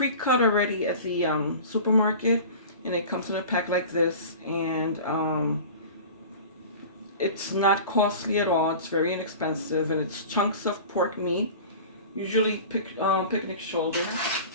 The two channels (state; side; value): inverted; both; correlation -0.38